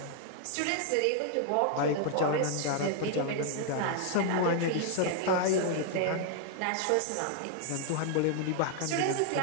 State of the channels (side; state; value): both; different; correlation 0.00